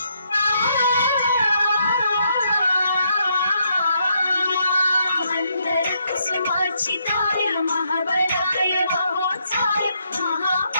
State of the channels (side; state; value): both; inverted; correlation -0.75